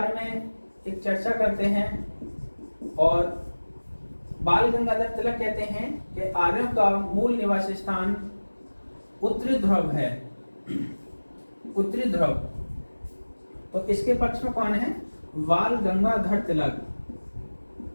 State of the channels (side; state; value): both; inverted; correlation -1.00